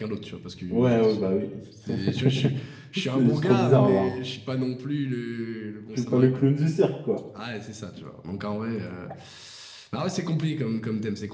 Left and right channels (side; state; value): both; identical; correlation 1.00